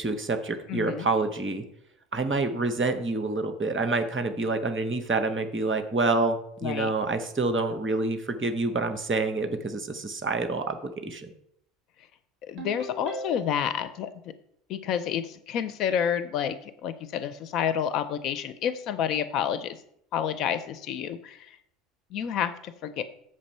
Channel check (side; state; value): both; normal; correlation 0.35